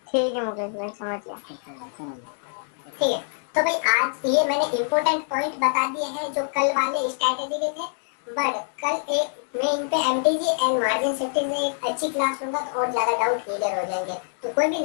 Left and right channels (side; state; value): right; silent; digital silence